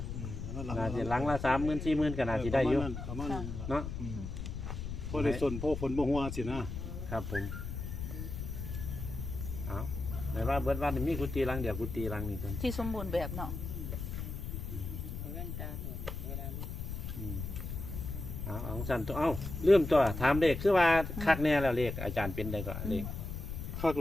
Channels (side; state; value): left; noise; rumble, 6 dB below the sound